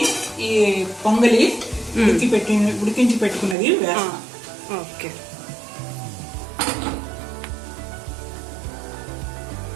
ఈ పొంగలి ఉడికించి పెట్టుకున్నది వేస్తాం. ఓకే,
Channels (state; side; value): drops out; left; at 3.6 s